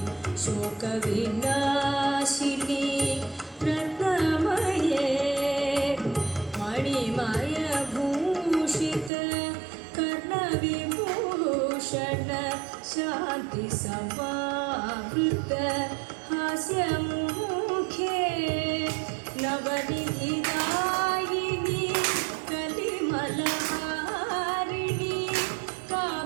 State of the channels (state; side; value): drops out; left; at 9.1 s